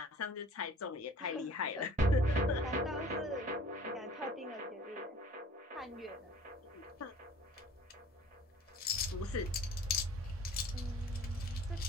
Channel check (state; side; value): normal; both; correlation 0.49